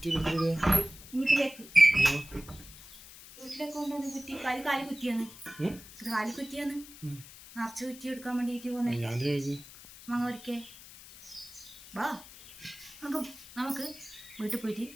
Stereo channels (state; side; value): noise; left; hiss, 17 dB below the sound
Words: വീട്ടിലേക്ക് കൊണ്ടുവന്ന് കുറ്റി കാലി കുറ്റിയാണ് നിറച്ച് കുറ്റി എടുക്കാൻ വേണ്ടിയിട്ട് പോകുന്നത്. മാങ്ങ പറിക്കേ വാ, നമുക്ക് വീട്ടിൽ പോയിട്ട്